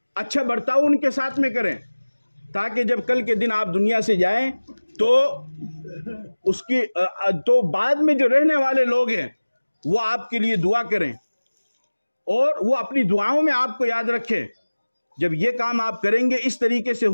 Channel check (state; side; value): inverted; both; correlation -1.00